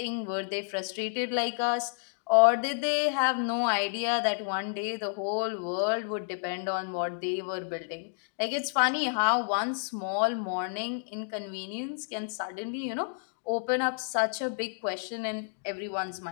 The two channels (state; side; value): silent; right; digital silence